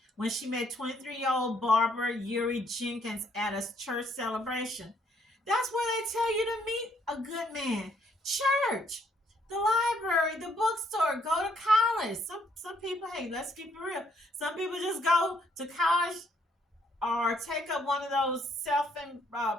when she met 23-year-old barber Euri Jenkins at a church celebration. That's where they tell you to meet a good man. Church, the library, the bookstore, go to college. Some people, hey, let's keep it real. Some people just go to college or take up one of those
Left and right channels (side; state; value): both; normal; correlation 0.68